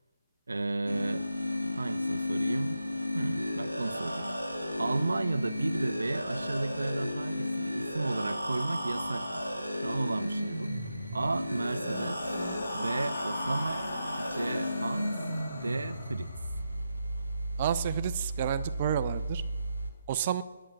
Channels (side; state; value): both; inverted; correlation -0.87